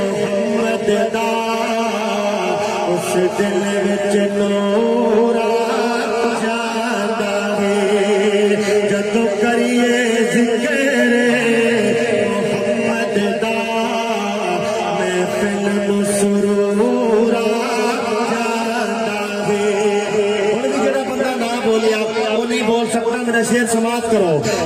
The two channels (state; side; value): identical; both; correlation 1.00